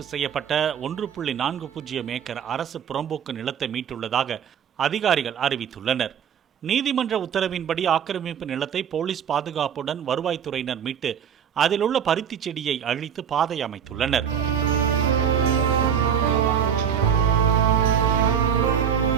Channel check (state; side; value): quieter; left; 8.1 dB